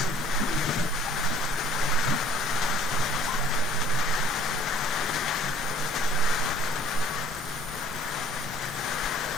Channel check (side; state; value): both; normal; correlation 0.54